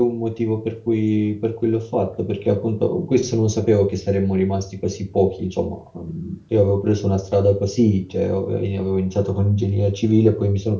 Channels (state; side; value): identical; both; correlation 1.00